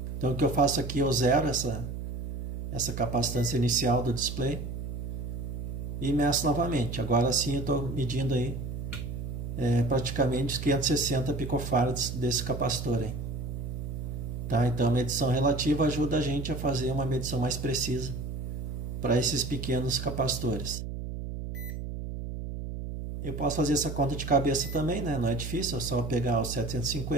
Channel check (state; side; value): noise; right; hum, 6 dB below the sound